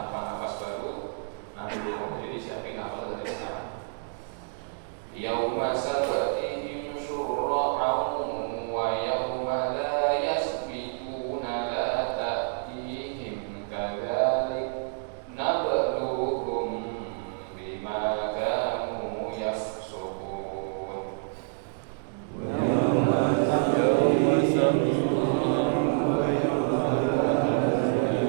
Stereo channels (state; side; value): silent; left; digital silence